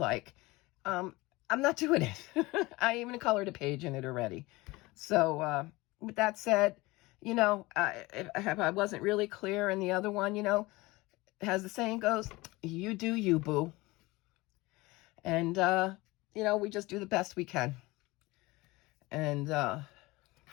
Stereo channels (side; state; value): right; quieter; 21.6 dB